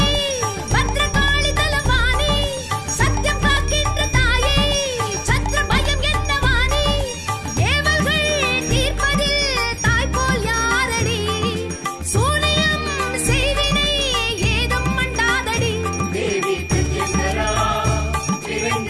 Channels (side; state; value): both; identical; correlation 1.00